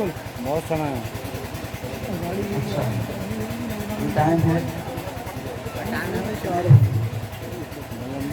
बहुत समय है। अच्छा, टाइम है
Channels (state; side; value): identical; both; correlation 1.00